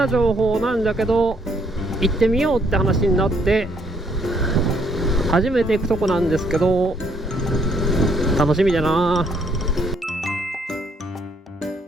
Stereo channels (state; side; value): normal; both; correlation 0.68